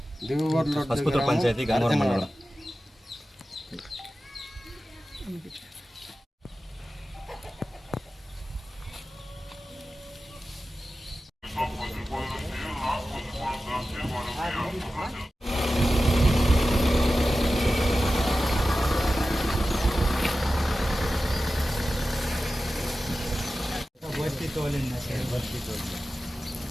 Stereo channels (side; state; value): both; normal; correlation 0.94